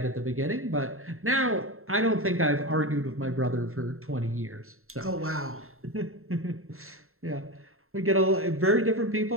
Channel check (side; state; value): left; late; 0.62 ms